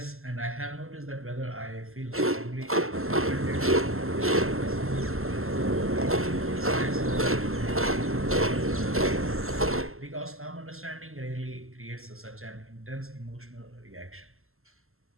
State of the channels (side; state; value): left; late; 0.62 ms